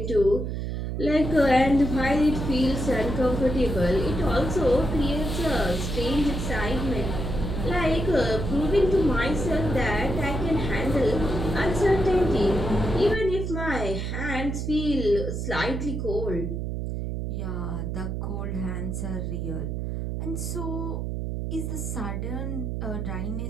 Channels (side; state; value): right; noise; hum, 3 dB below the sound